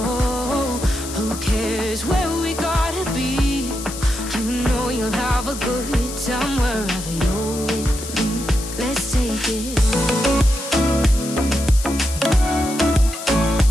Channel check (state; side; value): noise; left; hiss, 10 dB below the sound